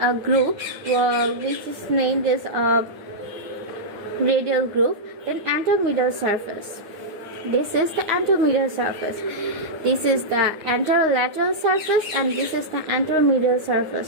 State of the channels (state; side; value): late; left; 9.4 ms